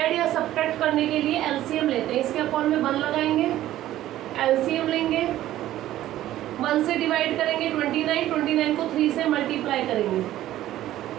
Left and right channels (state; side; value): quieter; left; 13.8 dB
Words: या सब्ट्रैक्ट करने के लिए एलसीएम लेते हैं, इसके अपॉन में 1 लगाएंगे, एलसीएम लेंगे, 1 से डिवाइड करेंगे 29 को 3 से मल्टीप्लाई करेंगे,